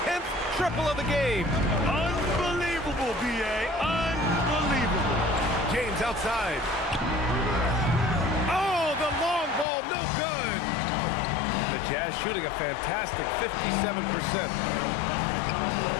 10th triple of the game. Unbelievable, B.A. Unbelievable. James outside. Oh, the long ball, no good. The Jazz shooting a fantastic 57%.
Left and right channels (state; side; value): drops out; right; at 9.7 s